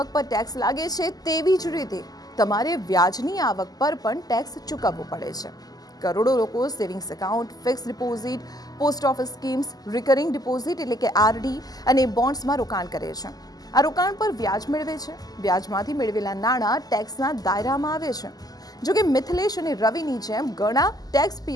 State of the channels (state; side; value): late; right; 0.18 ms